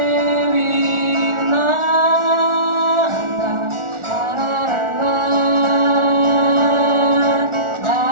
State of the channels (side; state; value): left; late; 1.4 ms